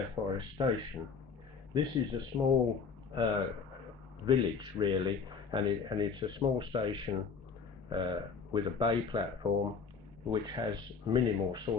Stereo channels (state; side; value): quieter; right; 5.6 dB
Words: Forest Station. This is a small village, really, and it's a small station with a bay platform which has minimal